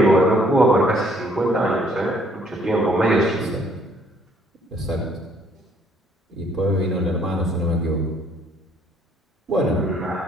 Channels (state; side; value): normal; both; correlation 0.63